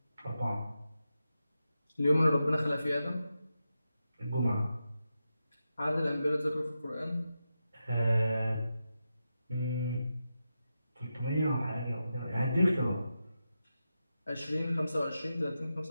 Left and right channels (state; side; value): inverted; both; correlation -0.89